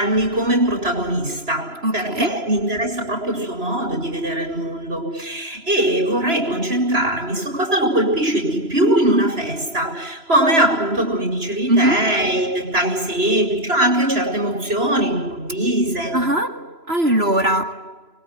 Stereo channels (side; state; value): left; late; 3.0 ms